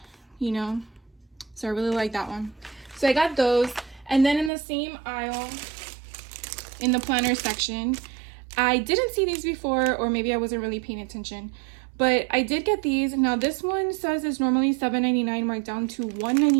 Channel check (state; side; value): drops out; left; at 4.5 s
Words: you know. So I really like that one. So I got those. And then in the same aisle, in the planner section, I didn't see these before, or maybe I wasn't really paying attention, but I did get these. Now this one says it's normally $7.99 marked down to